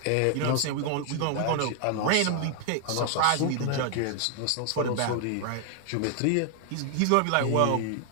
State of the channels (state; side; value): different; both; correlation 0.00